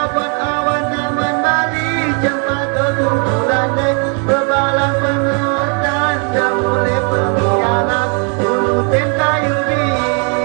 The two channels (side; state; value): left; quieter; 38.7 dB